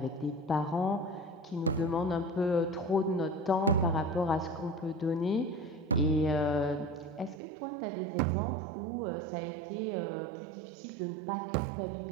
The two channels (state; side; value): drops out; left; at 7.4 s